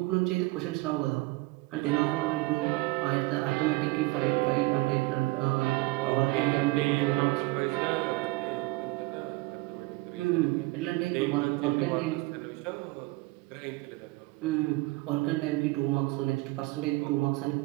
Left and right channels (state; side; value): quieter; left; 21.9 dB